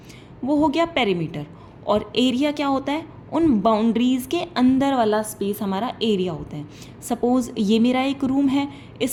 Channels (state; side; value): identical; both; correlation 1.00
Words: वो हो गया पेरीमीटर। और एरिया क्या होता है? उन बाउंड्रीज़ के अंदर वाला स्पेस हमारा एरिया होता है। सपोज़ ये मेरा एक रूम है,